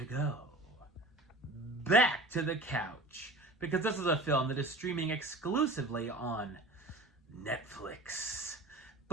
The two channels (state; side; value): normal; both; correlation 0.39